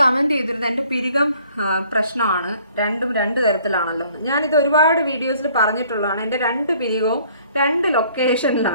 കമൻറ്റ് ചെയ്തിരുന്നത് എൻ്റെ പിരികം പ്രശ്നമാണ്, രണ്ടും 2 തരത്തിലാണല്ലോ. ഞാനിത് ഒരുപാട് വീഡിയോസിൽ പറഞ്ഞിട്ടുള്ളതാണ്. എൻ്റെ 2 പിരികവും 2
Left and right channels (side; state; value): both; inverted; correlation -0.59